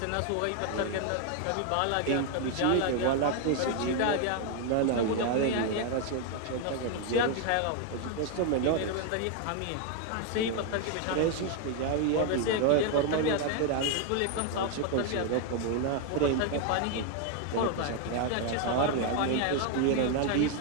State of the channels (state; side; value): different; both; correlation 0.00